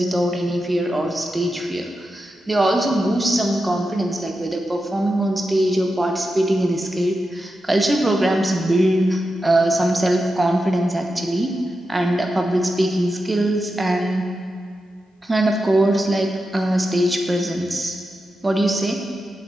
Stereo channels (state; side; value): normal; both; correlation 0.89